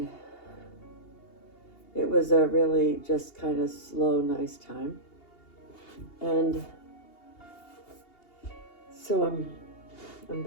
it was a really just kind of slow, nice time. And so I'm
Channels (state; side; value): late; right; 2.8 ms